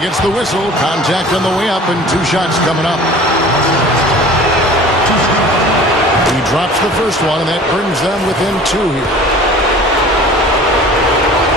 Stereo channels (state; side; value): normal; both; correlation 0.44